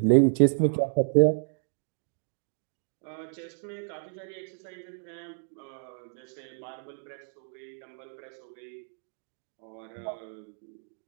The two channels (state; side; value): silent; left; digital silence